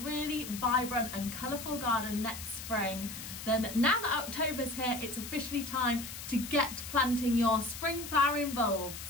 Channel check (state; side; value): noise; left; hiss, 10 dB below the sound